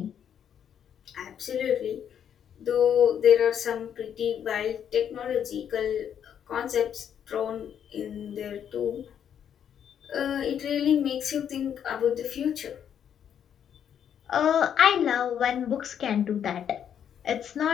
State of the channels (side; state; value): right; quieter; 8.9 dB